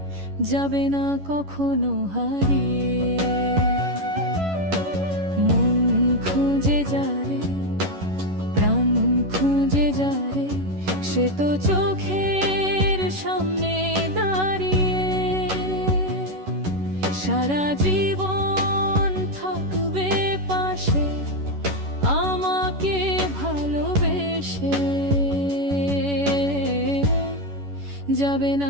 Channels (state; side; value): late; left; 11 ms